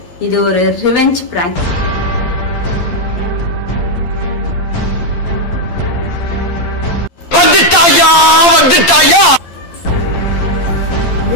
இது ஒரு ரிவெஞ்ச் பிராங்க்.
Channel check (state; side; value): late; right; 12 ms